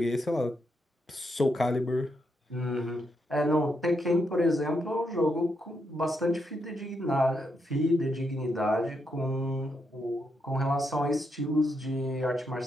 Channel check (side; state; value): both; normal; correlation 0.80